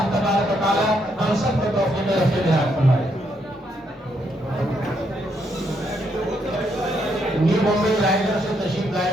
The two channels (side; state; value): both; normal; correlation 0.75